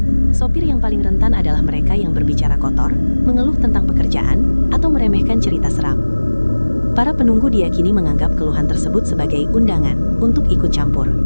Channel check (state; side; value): inverted; both; correlation -1.00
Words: Sopir yang paling rentan adalah mereka yang berbicara kotor, mengeluh tentang pekerjaan, atau meremehkan cerita seram. Para penunggu diyakini menganggap keluhan tersebut sebagai undangan untuk ikut campur.